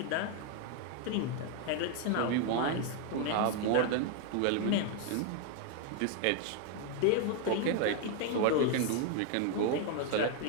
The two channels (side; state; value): both; different; correlation 0.00